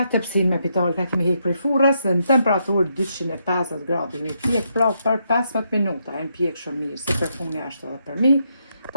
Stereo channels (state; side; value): inverted; both; correlation -0.78